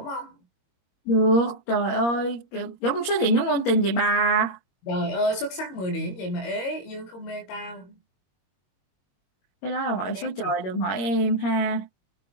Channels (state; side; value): late; right; 22 ms